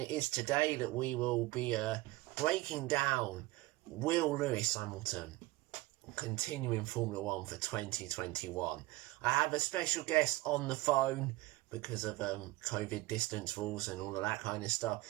it is today that we will be breaking down Will Lewis Hamilton continuing Formula 1 for 2021. I have a special guest on the phone because of COVID distance rules and all of that kind of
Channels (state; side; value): quieter; left; 20.0 dB